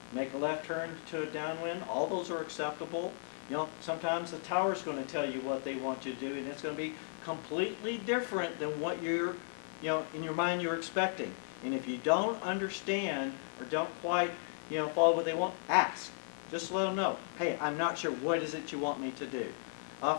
make a left turn to a downwind? All those are acceptable. Sometimes the tower's going to tell you what they want you to do, and it's going to be completely different than what you're, in your mind you're expecting. And if you don't understand or don't quite, follow what they want, ask. Just let them know, hey, I'm not sure, what is it you want me to do?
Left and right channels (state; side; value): silent; right; digital silence